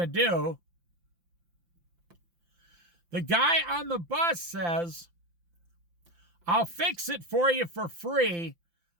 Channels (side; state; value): left; late; 5.8 ms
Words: to do. The guy on the bus says, "I'll fix it for you for free.